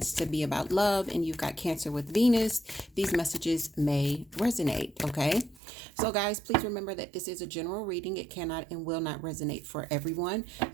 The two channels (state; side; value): drops out; left; at 5.6 s